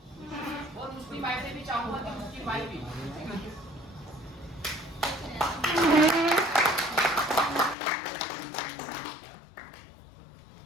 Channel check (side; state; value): right; drops out; at 7.8 s